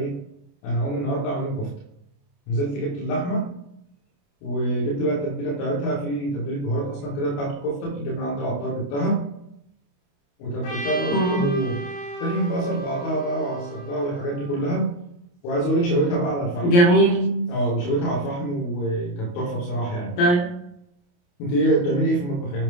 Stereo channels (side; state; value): right; late; 28 ms